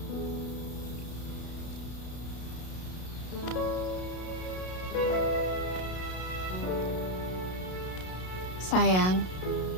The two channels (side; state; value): right; late; 32 ms